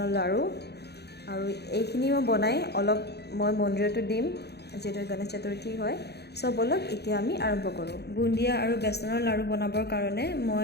লাড়ু আৰু এইখিনি মই বনাই অলপ মই মন্দিৰতো দিম যেহেতু গণেশ চতুৰ্থী হয় চ' বলক এতিয়া আমি আৰম্ভ কৰোঁ বুন্দিয়া আৰু বেচনৰ লাড়ু বনাবৰ কাৰণে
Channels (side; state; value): right; late; 0.48 ms